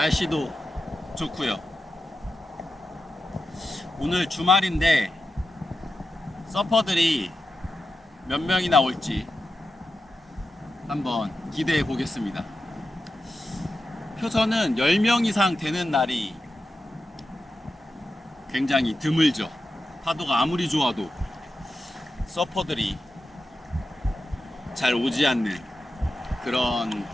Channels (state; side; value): normal; both; correlation 0.90